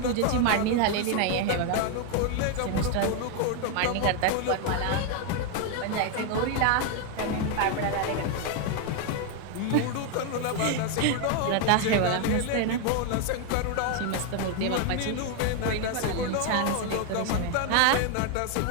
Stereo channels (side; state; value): both; different; correlation 0.01